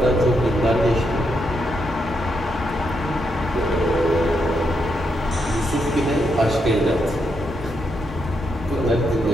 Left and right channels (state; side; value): normal; both; correlation 0.81